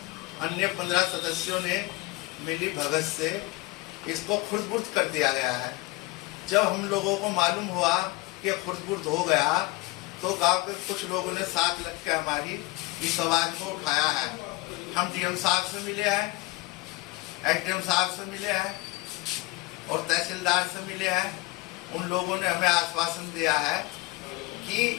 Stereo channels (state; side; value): quieter; right; 22.4 dB